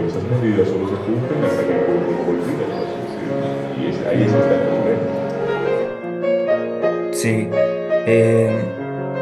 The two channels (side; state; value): both; identical; correlation 1.00